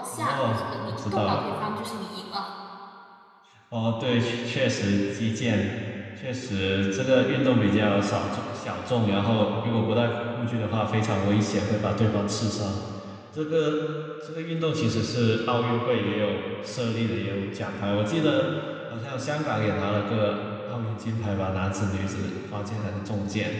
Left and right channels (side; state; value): both; identical; correlation 1.00